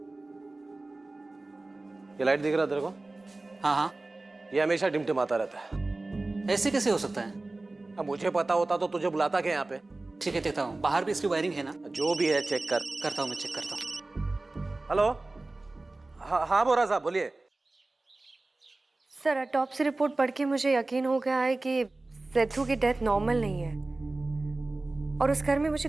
ये लाइट दिख रहा है तेरे को? हाँ हाँ। ये हमेशा टिमटिमाता रहता है। ऐसे कैसे हो सकता है? अब मुझे पता होता तो तुझे बुलाता क्या यहाँ पे? ठीक है, देखता हूँ। बाहर भी इसकी वायरिंग है ना? जो भी है चेक कर। करता हूँ, मैं चेक करता हूँ। हेलो, हाँ बोरा साहब बोलिए। सर, ऑटोप्सी रिपोर्ट पढ़ के मुझे यकीन हो गया है कि सेथु की डेथ नॉर्मल नहीं है। और उस घर में मुझे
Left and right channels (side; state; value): left; quieter; 3.1 dB